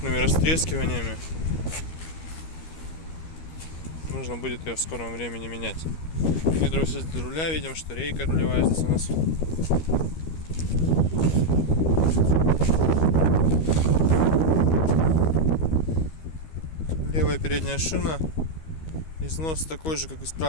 растрескиваниями. Нужно будет ее в скором времени менять. Гидроусилитель руля, видим, что рейка рулевая здесь у нас. Левая передняя шина, износ такой же, как и с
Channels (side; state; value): right; late; 13 ms